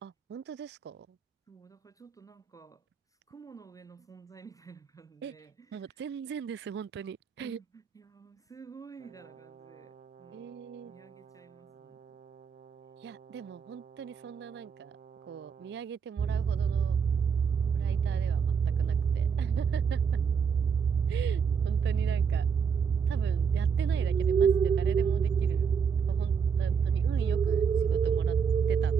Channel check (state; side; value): quieter; left; 6.5 dB